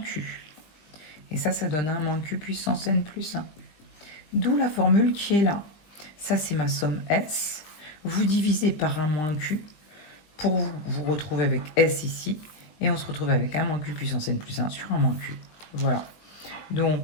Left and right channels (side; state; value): right; late; 20 ms